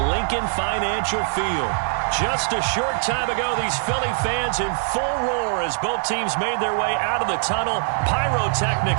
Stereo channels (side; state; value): left; silent; digital silence